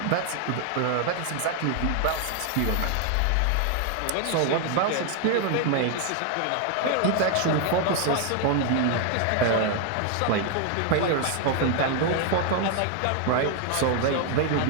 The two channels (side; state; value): both; different; correlation 0.00